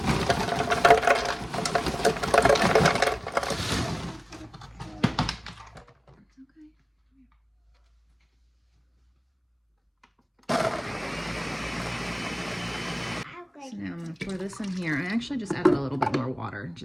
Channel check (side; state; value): both; identical; correlation 1.00